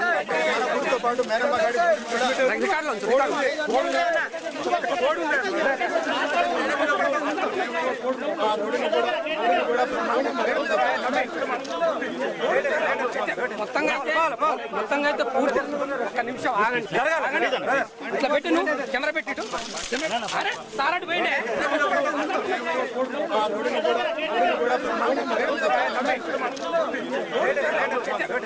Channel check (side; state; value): both; identical; correlation 1.00